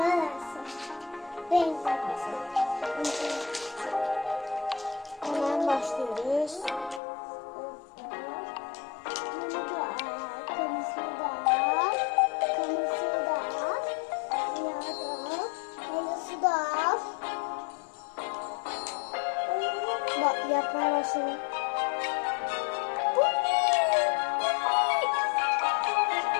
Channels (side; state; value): right; drops out; at 7.0 s